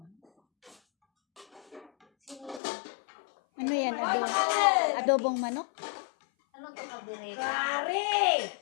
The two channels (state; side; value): drops out; right; at 2.6 s